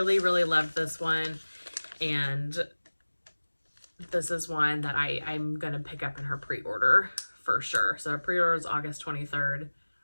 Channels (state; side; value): inverted; both; correlation -1.00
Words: really loved this one, and this is one that I'm going to pick up in her pre-order for sure. So her pre-order is August 23rd.